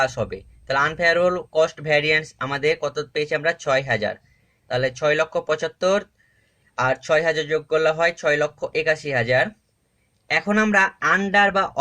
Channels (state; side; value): identical; both; correlation 1.00